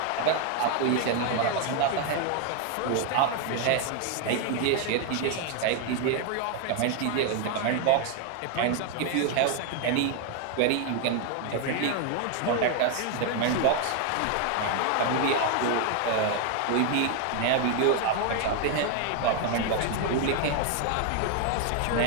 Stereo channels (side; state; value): both; different; correlation 0.01